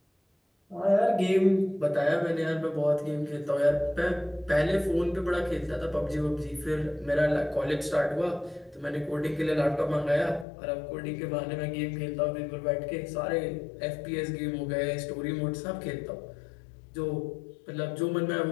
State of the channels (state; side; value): drops out; right; at 10.5 s